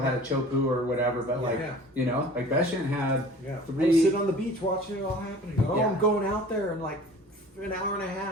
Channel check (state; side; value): normal; both; correlation 0.45